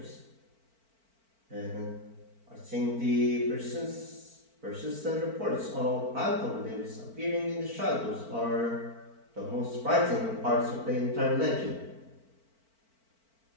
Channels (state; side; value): late; left; 4.5 ms